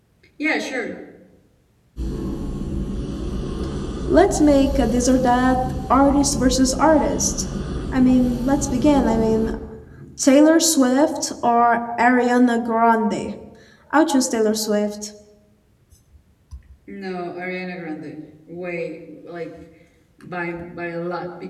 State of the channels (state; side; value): identical; both; correlation 1.00